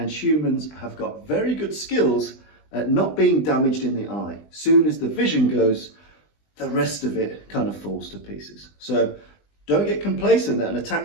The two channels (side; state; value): right; late; 20 ms